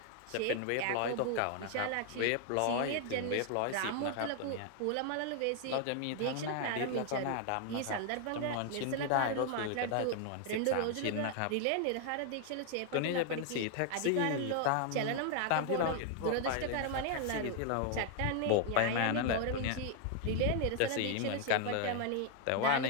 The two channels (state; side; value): different; both; correlation 0.00